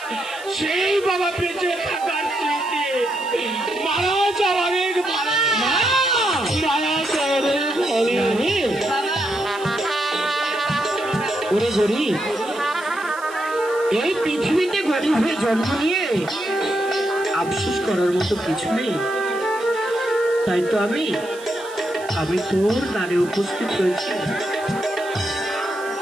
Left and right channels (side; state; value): right; noise; hiss, 19 dB below the sound